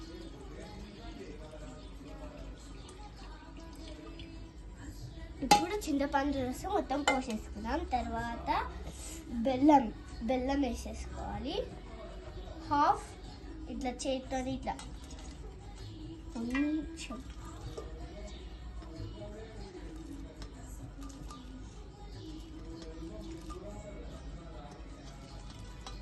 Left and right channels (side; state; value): both; identical; correlation 1.00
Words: ఇప్పుడు చింతపండు రసం మొత్తం పోసేసుకున్నాం. తర్వాత బెల్లం వేసేసుకోవాలి. హాఫ్ ఇట్లా చేతితో ఇట్లా కొంచెం